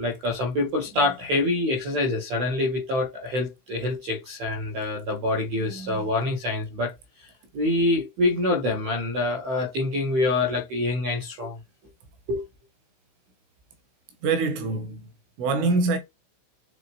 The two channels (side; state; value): left; late; 16 ms